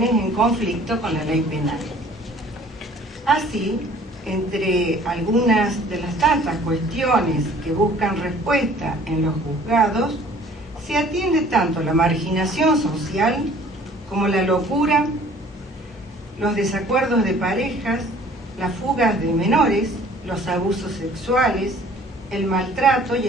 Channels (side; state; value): both; normal; correlation 0.52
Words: en conflicto con la ley penal. Así, entre algunas de las tantas cuestiones que buscan respuesta en los juzgados, se atiende tanto la marginación social como la locura, los desacuerdos de parejas, las fugas de menores, los abusos sexuales, el maltrato y